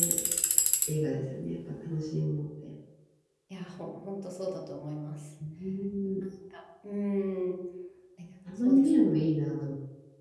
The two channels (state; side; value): identical; both; correlation 1.00